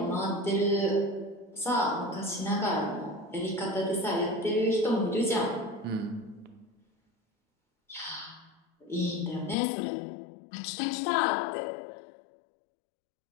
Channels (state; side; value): drops out; right; at 9.6 s